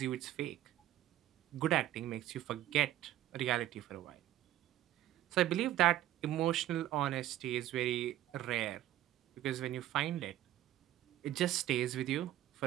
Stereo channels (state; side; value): quieter; left; 13.5 dB